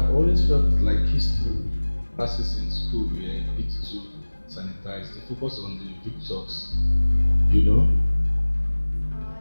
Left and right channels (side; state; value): both; inverted; correlation -1.00